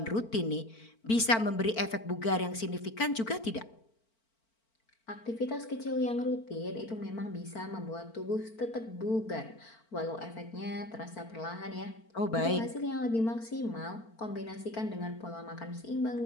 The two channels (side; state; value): right; late; 4.4 ms